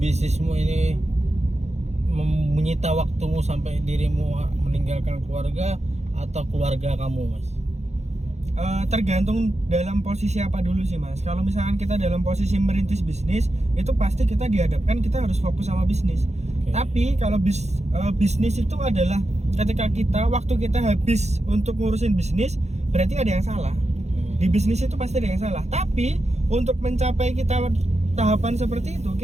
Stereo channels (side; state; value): left; late; 0.32 ms